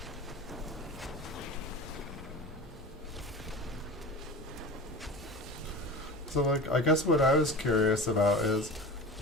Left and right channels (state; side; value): normal; both; correlation 0.34